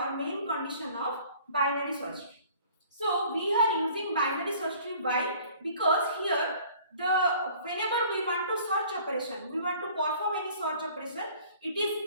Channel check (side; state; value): both; inverted; correlation -0.52